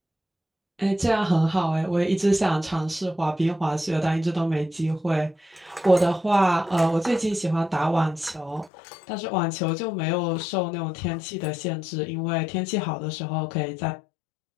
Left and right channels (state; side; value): drops out; right; at 8.7 s